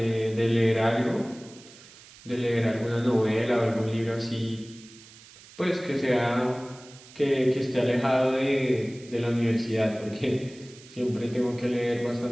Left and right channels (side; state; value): right; noise; hiss, 21 dB below the sound